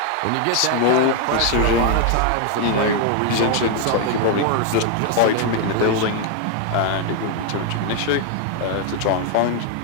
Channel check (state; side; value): different; both; correlation 0.00